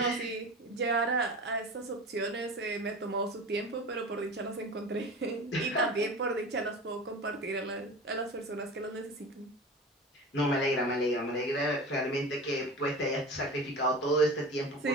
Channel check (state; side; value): normal; both; correlation 0.33